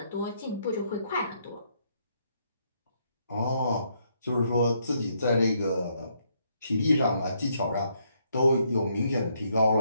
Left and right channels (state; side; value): inverted; both; correlation -0.74